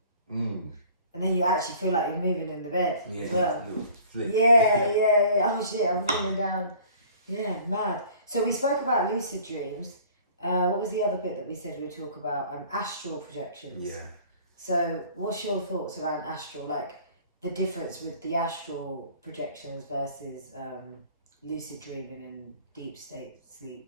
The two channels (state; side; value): inverted; both; correlation -0.50